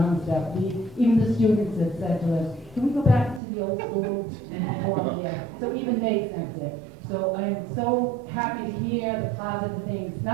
stuff. Even the students have said to us, can we go back to the old school and perform there? So even they sense it. So I'm so happy to hear the positive things,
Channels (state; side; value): drops out; left; at 3.4 s